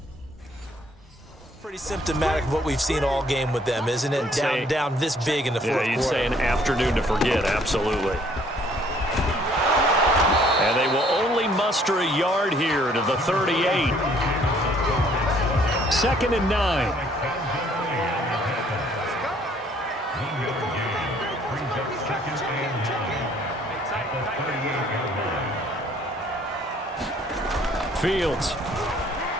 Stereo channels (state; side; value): normal; both; correlation 0.61